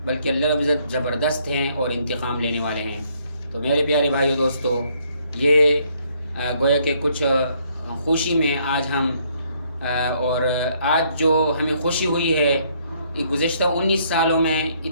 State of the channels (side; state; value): both; inverted; correlation -0.68